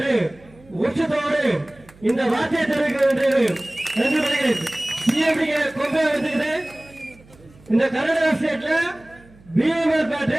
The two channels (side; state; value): right; noise; hum, 26 dB below the sound